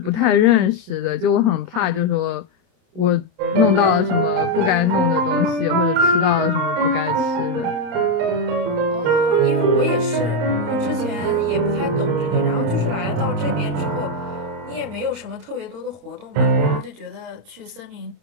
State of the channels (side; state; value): left; late; 27 ms